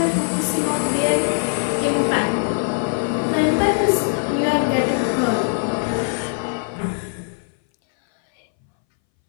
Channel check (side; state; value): right; silent; 62 dB below the other